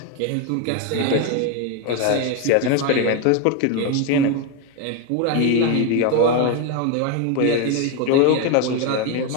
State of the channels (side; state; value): both; different; correlation 0.02